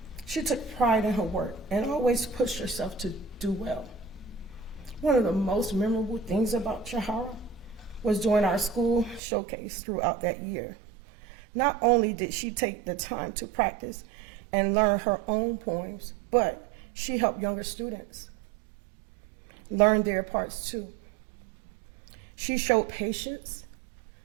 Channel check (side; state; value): left; drops out; at 9.2 s